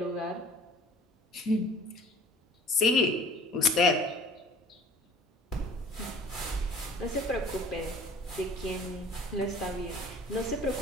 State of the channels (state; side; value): normal; both; correlation 0.48